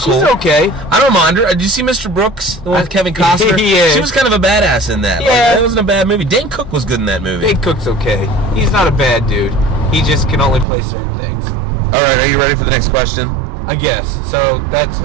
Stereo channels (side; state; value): left; drops out; at 10.7 s